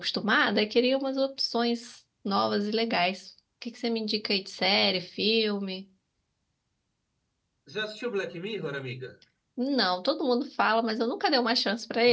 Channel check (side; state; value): both; identical; correlation 1.00